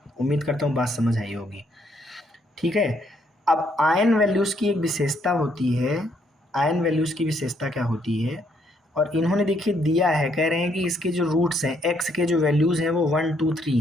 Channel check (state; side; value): normal; both; correlation 0.71